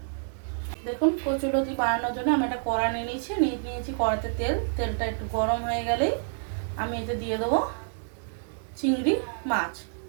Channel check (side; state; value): left; silent; digital silence